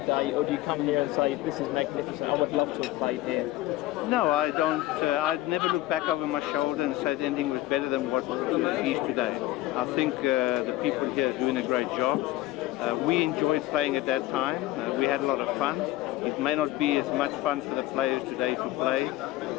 or do you come here and say, this is magnificent, I would love to have played here? No, I don't. I'd never look back over my shoulder and say anything was better than what it is today. I think the people here are doing a great job. We enjoyed playing at that time. We had a lot of fun. It may not be as much fun for the players today to play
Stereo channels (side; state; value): right; quieter; 16.5 dB